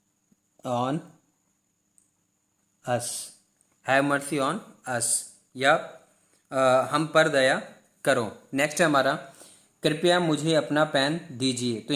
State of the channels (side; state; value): both; identical; correlation 1.00